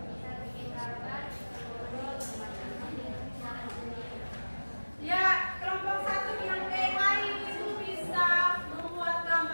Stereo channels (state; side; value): inverted; both; correlation -1.00